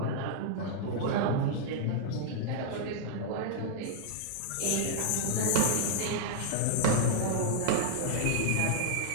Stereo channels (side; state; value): both; different; correlation -0.02